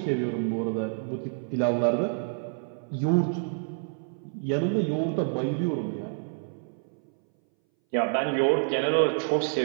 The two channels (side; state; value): left; silent; 59 dB below the other